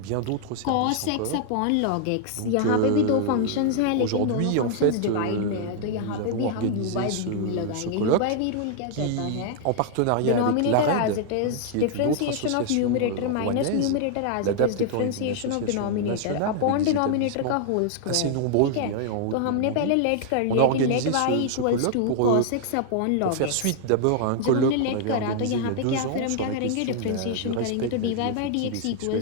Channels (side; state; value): both; different; correlation 0.00